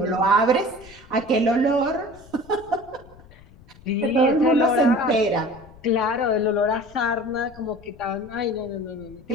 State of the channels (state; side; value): noise; left; rumble, 23 dB below the sound